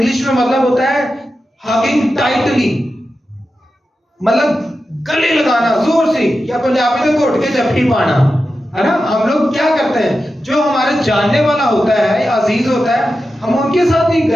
میں مطلب ہوتا ہے ہگنگ ٹائٹلی, مطلب گلے لگانا زور سے, یا پنجابی میں گھٹ کے جپھی پانا ہے نا. ہم لوگ کیا کرتے ہیں, جو ہمارے جاننے والا ہوتا ہے یا عزیز ہوتا ہے ہم ان کے ساتھ ہی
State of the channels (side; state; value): both; normal; correlation 0.91